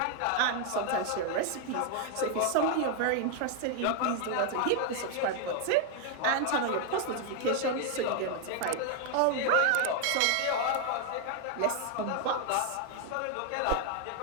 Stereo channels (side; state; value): both; different; correlation 0.00